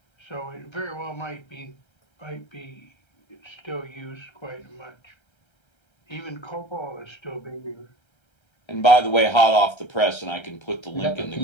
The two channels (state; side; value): late; right; 1.3 ms